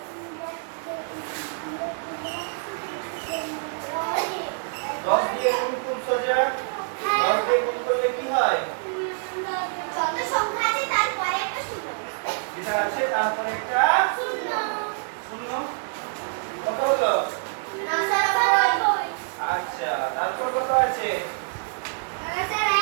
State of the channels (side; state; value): left; silent; 61 dB below the other